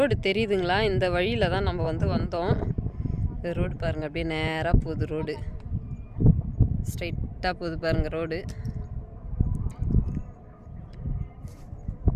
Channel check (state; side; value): identical; both; correlation 1.00